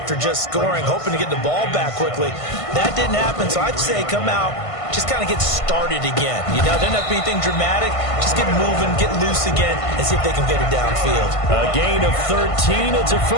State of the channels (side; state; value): right; late; 1.5 ms